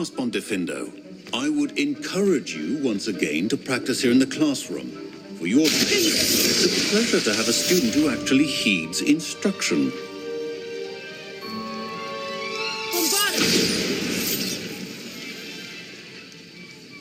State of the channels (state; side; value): identical; both; correlation 1.00